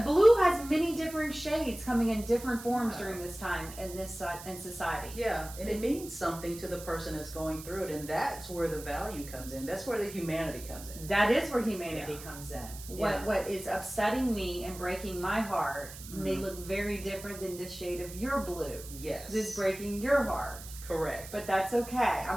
has many different shades coming in different forms during this time in society. And it means something to the person that's going through it, and that's where the value comes in. That's where the humanity comes in. That is where humanity comes in. What is upsetting me and breaking my heart may look very different than the shade of your blue. Yes. This is breaking your heart. Correct. But that's okay.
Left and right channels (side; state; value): right; noise; hiss, 14 dB below the sound